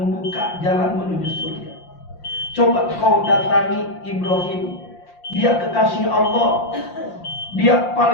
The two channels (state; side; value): late; right; 5.7 ms